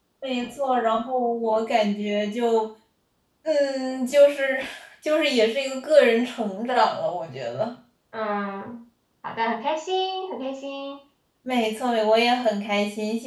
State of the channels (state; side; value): identical; both; correlation 1.00